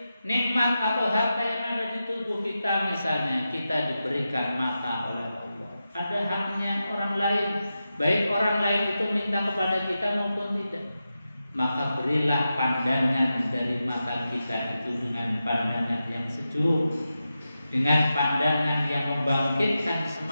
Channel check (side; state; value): both; inverted; correlation -0.90